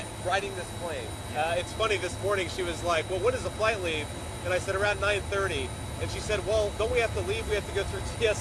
Riding this plane. It's funny, this morning she was like, well, when does the flight leave? And I said, around 9:30. And she said, well, don't we have to leave? We have to go through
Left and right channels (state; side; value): identical; both; correlation 1.00